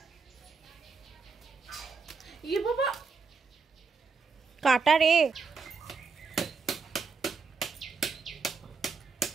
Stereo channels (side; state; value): left; quieter; 5.0 dB